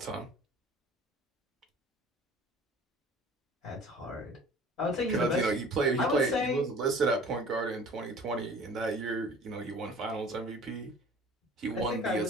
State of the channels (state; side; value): normal; both; correlation 0.47